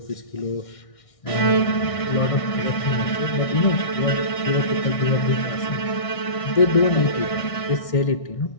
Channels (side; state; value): right; late; 1.6 ms